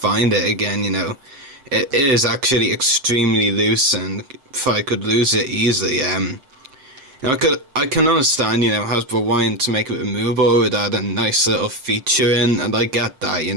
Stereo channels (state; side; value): late; left; 7.7 ms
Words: it again, you know. It is actually extremely loose, and if I could lose it easily, you know, I can understand, you know, Hasbro wanting to make it removable with add a nice little feature in, and I get that, you